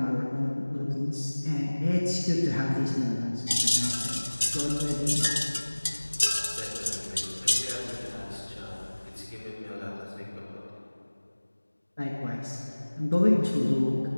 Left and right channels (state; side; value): inverted; both; correlation -1.00